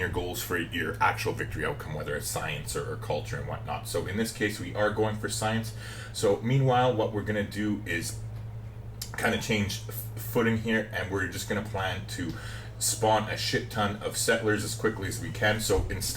goals for your actual victory outcome, whether it's science or culture and whatnot. So in this case, we are going for science. So meanwhile, what we're going to do is kind of change footing here, and we're just going to plan to spawn a shit ton of settlers as quickly as we can. So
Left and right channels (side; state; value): both; identical; correlation 1.00